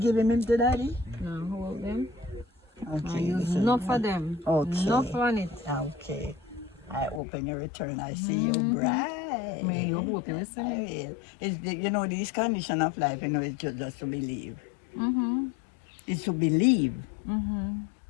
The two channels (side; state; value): right; drops out; at 7.2 s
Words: him to daddy? No, hold them. Okay. Use this is enough for one. them. Okay. Enough on it. Okay. I open your return. I see you bright. May you hope you I listen. will. It's the, you know, this condition of life, you know, it's just to believe. It's to believe.